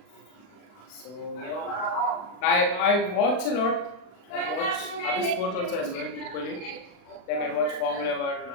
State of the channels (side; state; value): right; late; 39 ms